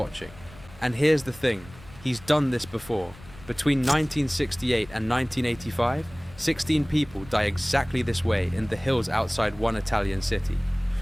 And here's the thing, he's done this before. Between 1968 and 1985, 16 people die exactly this way in the hills outside one Italian city.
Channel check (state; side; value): noise; left; rumble, 20 dB below the sound